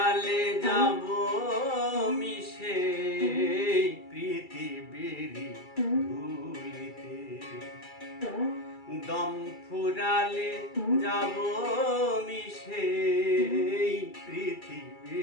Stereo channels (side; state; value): right; late; 2.3 ms